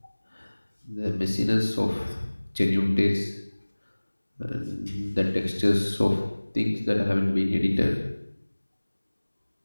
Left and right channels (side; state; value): both; inverted; correlation -1.00